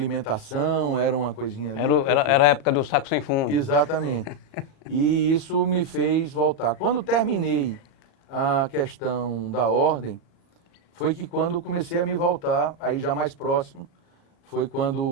era uma coisinha ali. Era a época do saco sem fundo. Exatamente. E isso me fez voltar. Quando terminei a questão da ordem, foi que quando comecei a me voltar, aí já mais próximo, foi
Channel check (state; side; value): late; right; 37 ms